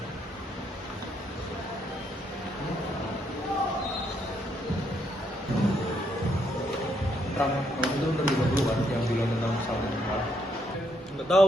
Kamu itu terlibat dulu kan yang bilang tentang kesalahan. Nggak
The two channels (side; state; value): both; normal; correlation 0.74